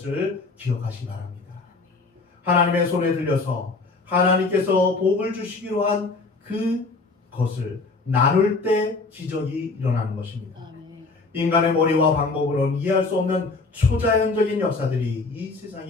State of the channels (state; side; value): quieter; right; 3.8 dB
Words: 기억하시기 바랍니다. 하나님의 손에 들려서 하나님께서 복을 주시기로 한 그것을 나눌 때 기적이 일어나는 것입니다. 인간의 머리와 방법으로는 이해할 수 없는 초자연적인 역사들이 이